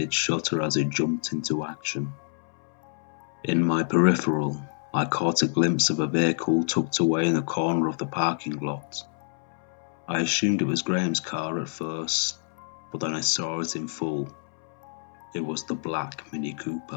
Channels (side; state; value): right; silent; 60 dB below the other